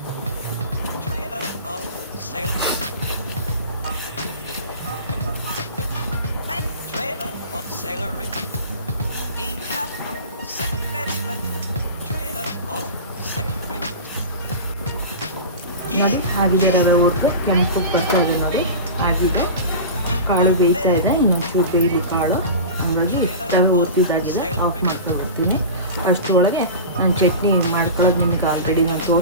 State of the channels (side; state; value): both; inverted; correlation -0.30